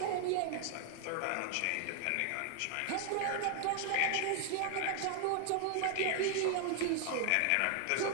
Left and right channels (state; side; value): different; both; correlation 0.00